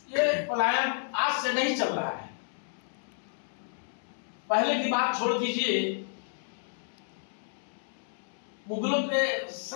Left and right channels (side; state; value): right; silent; 57 dB below the other